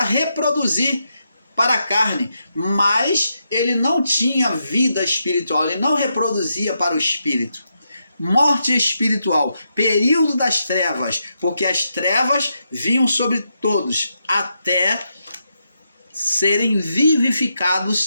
para a carne, mas ele não tinha vida espiritual, ele não reproduzia para o espírito. Morte espiritual, período das trevas, porque as trevas vinham sobre todos, até serem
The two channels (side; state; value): both; inverted; correlation -0.83